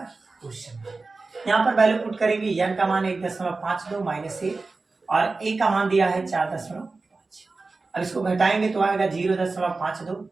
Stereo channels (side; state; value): left; quieter; 3.7 dB